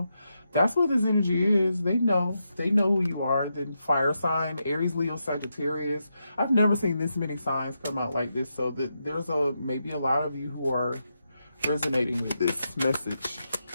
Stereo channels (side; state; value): both; inverted; correlation -0.85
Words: That's what this energy is. They know who you are. Then fire sign, Aries, Leo, Sagittarius. I've never seen this many signs come out like this. So that there's maybe a lot of you who are resonating with this message.